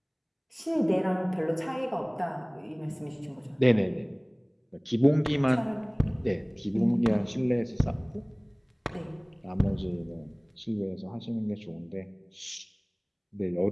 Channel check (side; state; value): both; identical; correlation 1.00